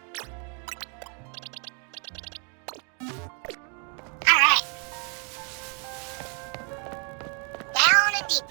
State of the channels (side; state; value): left; quieter; 37.2 dB